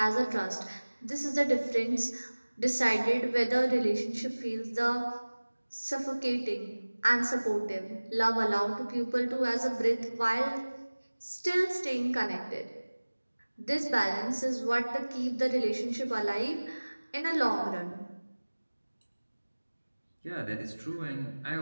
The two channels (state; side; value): inverted; both; correlation -1.00